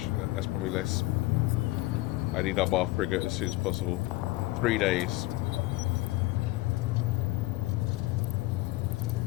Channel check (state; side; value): quieter; right; 19.5 dB